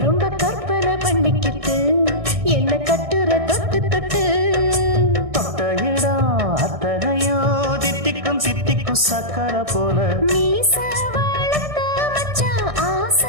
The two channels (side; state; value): left; late; 1.6 ms